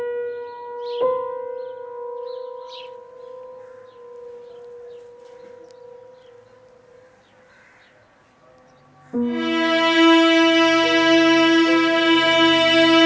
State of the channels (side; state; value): both; identical; correlation 1.00